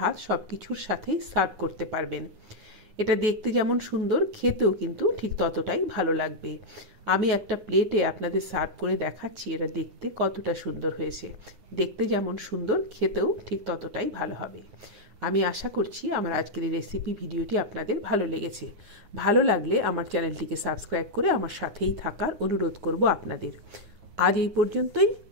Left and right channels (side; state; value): left; late; 9.7 ms